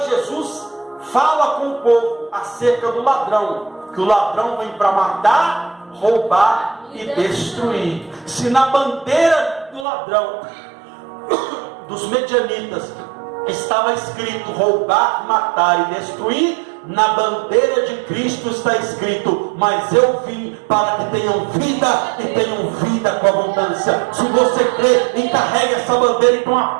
Jesus fala com o povo acerca do ladrão, que o ladrão vem para matar, roubar e destruir. Se na bandeira do ladrão, dos medianitas, estava escrito roubar, matar e destruir, na bandeira de Cristo está escrito: mas eu vim para que tenham vida e tenham vida com abundância. Se você crê, encarregue essa bandeira, então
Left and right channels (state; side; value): drops out; left; at 9.9 s